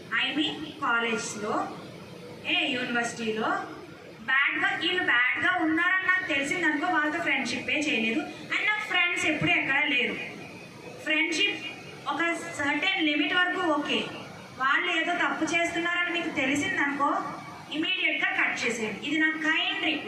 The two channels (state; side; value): identical; both; correlation 1.00